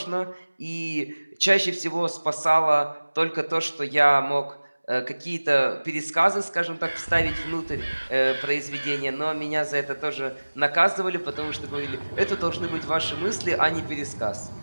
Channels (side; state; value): both; inverted; correlation -1.00